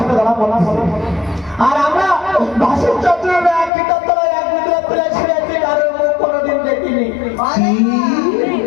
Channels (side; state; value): right; drops out; at 3.7 s